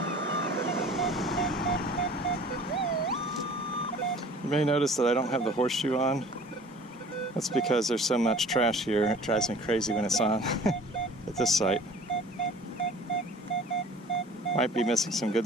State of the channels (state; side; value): normal; both; correlation 0.47